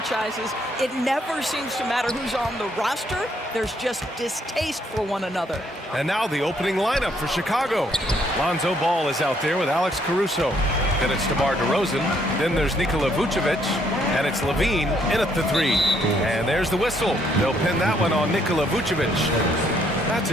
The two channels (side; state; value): both; normal; correlation 0.69